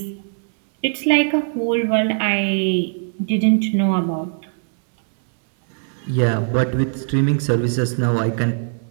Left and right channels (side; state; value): left; silent; 66 dB below the other